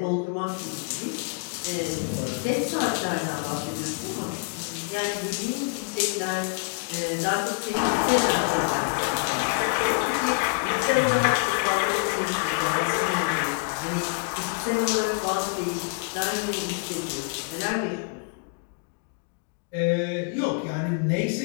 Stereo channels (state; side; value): quieter; right; 36.0 dB